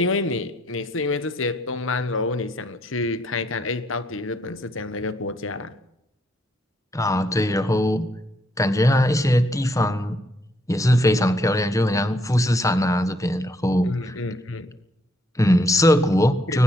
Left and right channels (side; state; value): both; normal; correlation 0.72